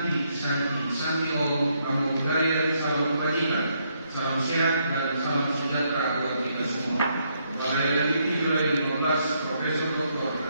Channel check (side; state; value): both; inverted; correlation -0.75